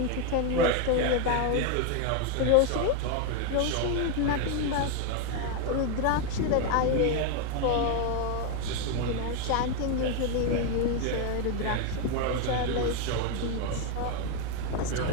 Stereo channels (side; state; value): both; different; correlation 0.01